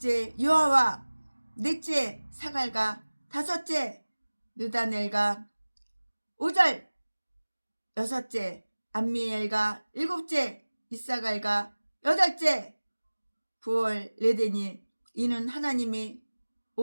요아와 넷째 사갈과 다섯째 느다넬과 5절 여섯째 암미엘과 일곱째 이사갈과 여덟째 부올레데니. 이는 하나님이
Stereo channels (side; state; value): both; inverted; correlation -1.00